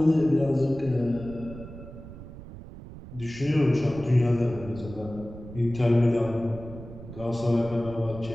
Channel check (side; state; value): right; noise; rumble, 14 dB below the sound